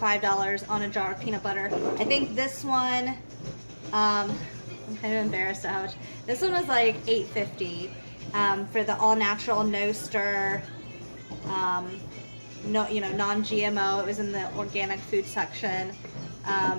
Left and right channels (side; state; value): both; inverted; correlation -1.00